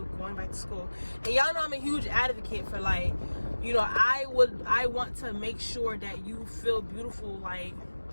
back to school. And y'all know I'm a huge advocate for, like, you know, I want to make sure that you feel beautiful, like,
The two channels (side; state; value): both; inverted; correlation -1.00